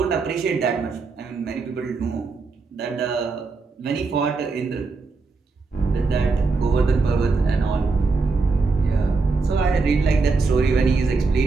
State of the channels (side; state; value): left; quieter; 4.2 dB